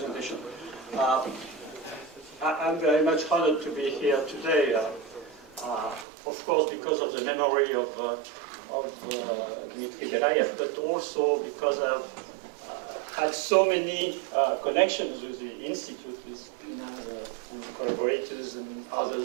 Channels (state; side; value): drops out; left; at 6.1 s